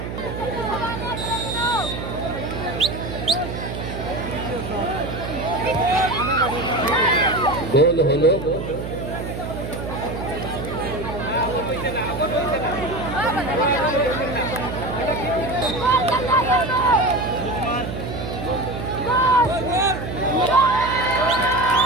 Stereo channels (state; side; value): noise; right; hum, 7 dB below the sound